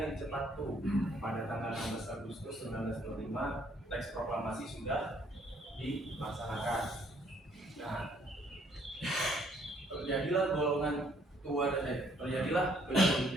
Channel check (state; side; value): normal; both; correlation 0.65